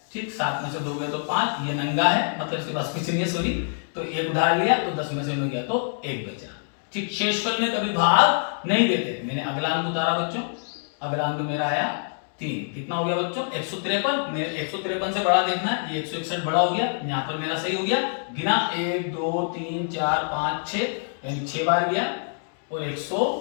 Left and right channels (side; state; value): right; silent; digital silence